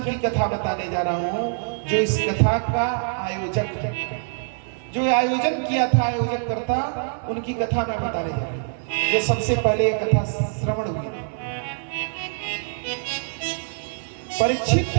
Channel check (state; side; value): silent; left; digital silence